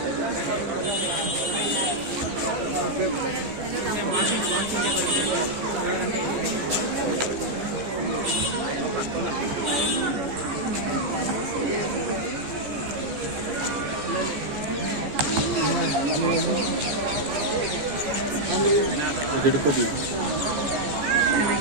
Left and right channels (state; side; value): late; left; 15 ms